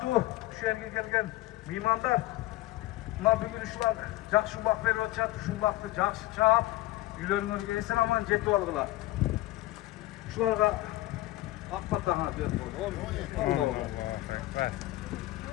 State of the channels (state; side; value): quieter; right; 17.5 dB